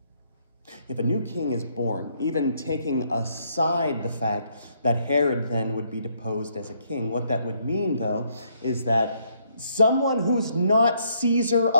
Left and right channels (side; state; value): both; inverted; correlation -0.71